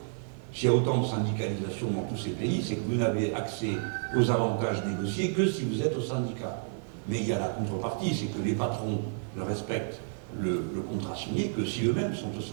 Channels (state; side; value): silent; left; digital silence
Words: S'il y a autant de syndicalisation dans tous ces pays, c'est que vous n'avez accès aux avantages négociés que si vous êtes au syndicat. Mais il y a la contrepartie, c'est que les patrons ne respectent le contrat signé que si eux-mêmes sont au